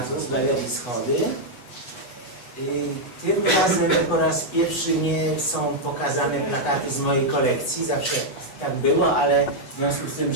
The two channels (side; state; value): right; late; 8.2 ms